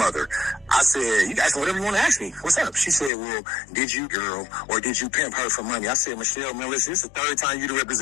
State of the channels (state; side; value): drops out; right; at 3.1 s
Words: I said, you guys, whatever you want to ask me. What's up? She said, well, did you girl or did you pimp her for money? I said, Michelle, man, listen, this is the third time you